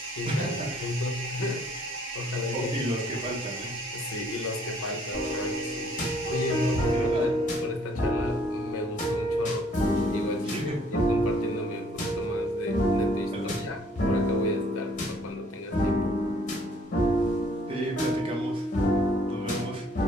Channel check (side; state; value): both; normal; correlation 0.62